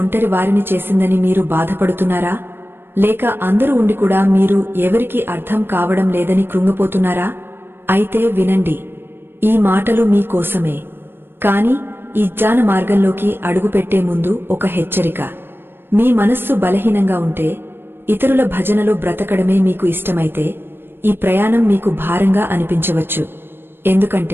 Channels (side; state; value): left; late; 0.10 ms